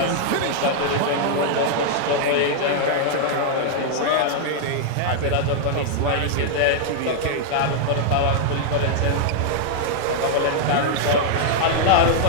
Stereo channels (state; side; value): different; both; correlation -0.01